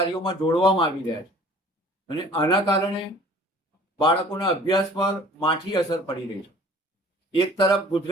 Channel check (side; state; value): both; normal; correlation 0.50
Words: જોડવામાં આવી રહ્યા છે અને આના કારણે બાળકોના અભ્યાસ પર માઠી અસર પડી રહી છે. એક તરફ